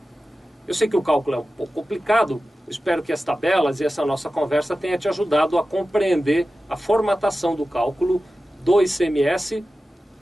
Eu sei que o cálculo é um pouco complicado, espero que as tabelas e essa nossa conversa tenha te ajudado a compreender a formatação do cálculo do ICMS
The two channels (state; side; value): normal; both; correlation 0.94